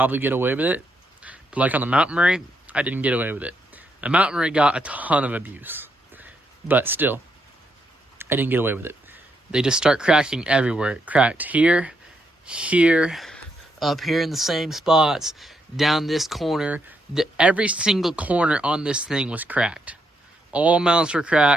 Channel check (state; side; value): normal; both; correlation 0.78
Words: get away with it. But like on the Mountain Murray, I didn't get away with it. The Mountain Murray got a ton of abuse. But still, I didn't get away with it. They just start cracking everywhere. It cracked here, here, up here in the same spots, down this corner. Every single corner on this thing was cracked. All mounts were